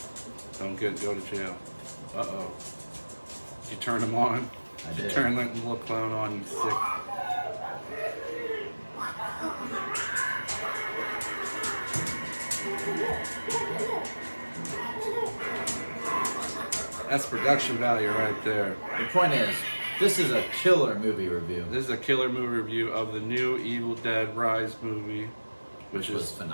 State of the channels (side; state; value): both; inverted; correlation -1.00